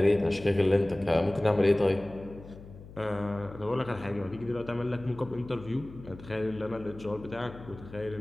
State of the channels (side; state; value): left; noise; hum, 17 dB below the sound